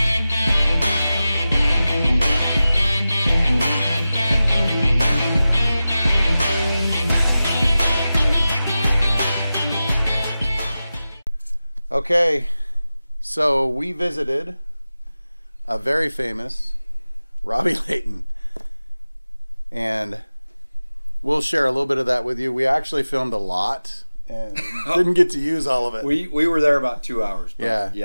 Okay, so we visited a very famous Robby Layton, and we'll share a little bit of that with you. We actually filmed a lot and didn't get to use all of it. We were there about 2 hours. But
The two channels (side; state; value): both; inverted; correlation -0.95